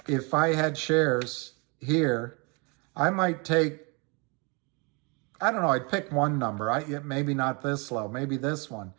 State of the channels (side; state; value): left; quieter; 31.5 dB